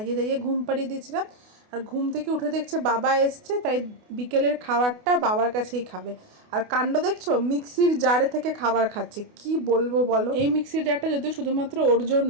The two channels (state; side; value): late; left; 28 ms